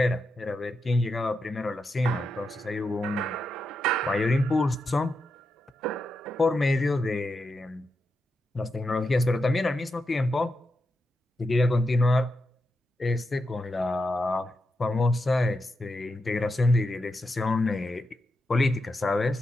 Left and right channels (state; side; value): normal; both; correlation 0.86